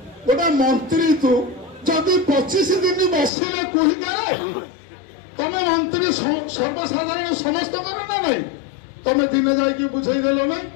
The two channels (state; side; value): drops out; right; at 3.3 s